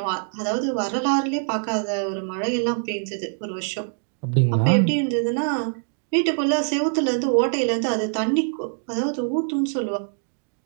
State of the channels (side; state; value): left; silent; digital silence